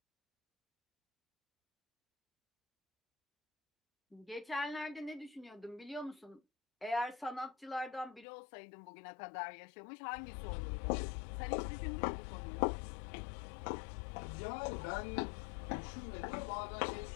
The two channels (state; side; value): drops out; right; at 8.2 s